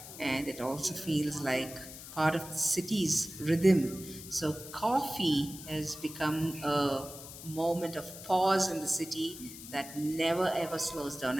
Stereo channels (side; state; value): left; noise; hiss, 13 dB below the sound